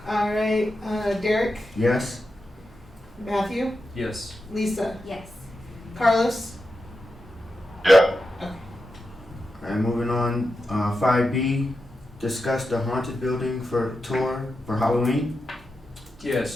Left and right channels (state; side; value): normal; both; correlation 0.89